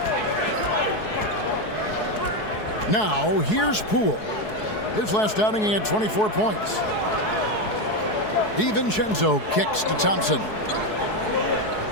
Now, here's Poole. His last outing, he had 24 points. DiVincenzo kicks to Thompson.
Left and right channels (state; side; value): late; right; 4.7 ms